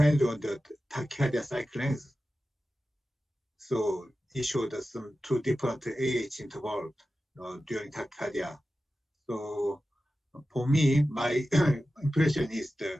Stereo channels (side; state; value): both; normal; correlation 0.94